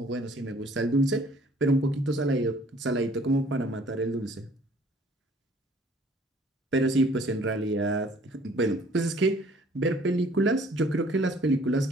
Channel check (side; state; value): both; normal; correlation 0.56